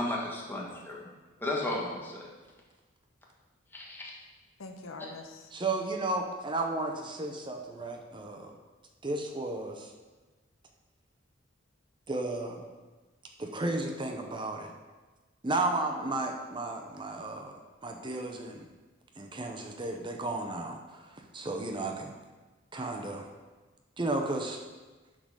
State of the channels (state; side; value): normal; both; correlation 0.29